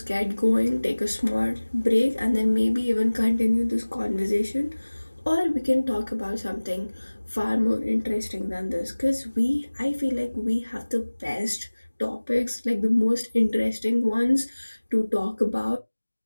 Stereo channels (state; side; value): inverted; both; correlation -1.00